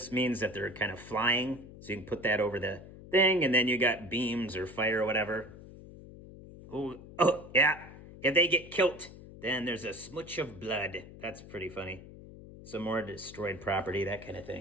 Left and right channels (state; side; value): noise; left; hum, 16 dB below the sound